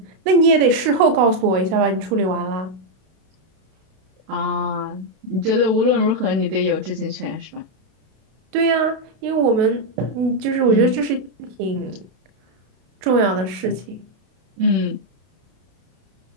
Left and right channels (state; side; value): late; left; 32 ms